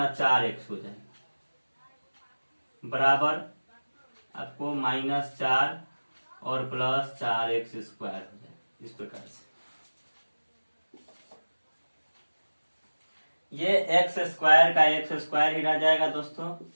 4x हो जाएगा बराबर आपको -4 और प्लस 4x² हो जाएगा, इस प्रकार से। ये x² का x² ही रह जाएगा दोस्तों,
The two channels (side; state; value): both; inverted; correlation -1.00